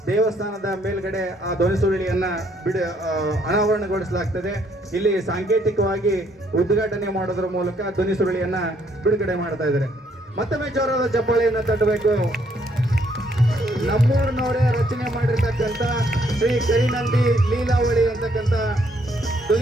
ದೇವಸ್ಥಾನದ ಮೇಲ್ಗಡೆ ಆ ಧ್ವನಿ ಸುರುಳಿಯನ್ನ ಅನಾವರಣಗೊಳಿಸಲಾಗ್ತದೆ. ಇಲ್ಲಿ ಸಾಂಕೇತಿಕವಾಗಿ ಉದ್ಘಾಟನೆ ಮಾಡೋದ್ರ ಮೂಲಕ ಧ್ವನಿ ಸುರುಳಿಯನ್ನ ಬಿಡುಗಡೆ ಮಾಡ್ತಾ ಇದ್ದಾರೆ. ಮತ್ತೊಮ್ಮೆ ಜೋರಾದ ಚಪ್ಪಾಳೆಯನ್ನ ತಟ್ಟಬೇಕು. ನಮ್ಮೂರಿನವರೇ ರಚನೆ ಮಾಡಿರ್ತಕ್ಕಂಥ ಶ್ರೀ ಕರಿನಂದಿ ಲೀಲಾವಳಿ ಅಂತಕ್ಕಂಥ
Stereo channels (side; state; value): both; normal; correlation 0.69